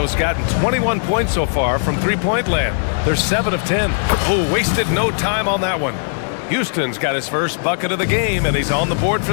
gotten 21 points so far from three-point land. They're 7 of 10. Oh, wasted no time on that one. Houston's got his first bucket of the game, and he's on the board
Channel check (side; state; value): right; silent; digital silence